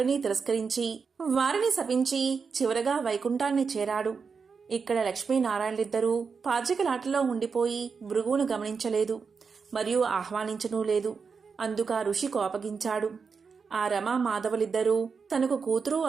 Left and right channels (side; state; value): left; quieter; 5.4 dB